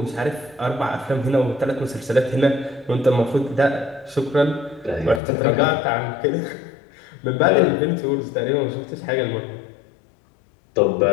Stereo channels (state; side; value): drops out; right; at 5.2 s